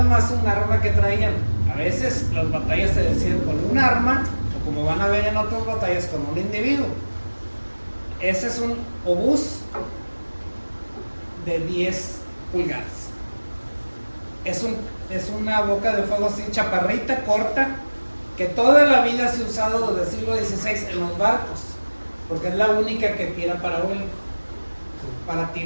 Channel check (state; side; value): inverted; both; correlation -1.00